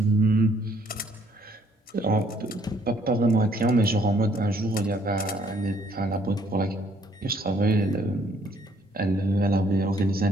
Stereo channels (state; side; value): normal; both; correlation 0.64